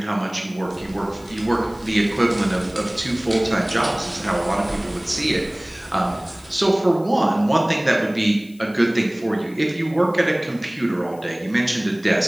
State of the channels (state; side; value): noise; left; hiss, 26 dB below the sound